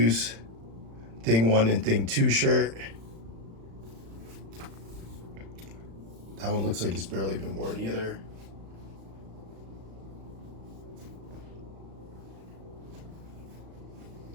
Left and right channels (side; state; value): left; late; 35 ms